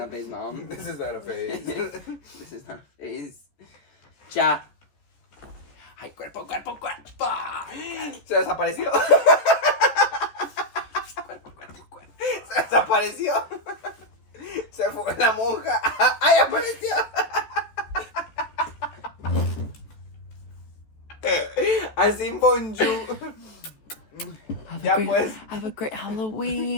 phase, mom. This is not a phase. This is not a phase. Ya. Ay, cuerpo. Se desapareció. Cuerpo. Se desapareció. Se fue la monja. ¡Ay, apareció! Así bonjour. Ya pues. Have a great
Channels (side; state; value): right; late; 14 ms